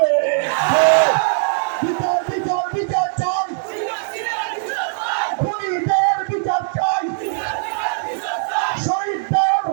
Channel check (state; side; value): silent; left; 59 dB below the other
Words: বিচার বিচার বিচার চাই, খুনিদের বিচার চাই, শহীদদের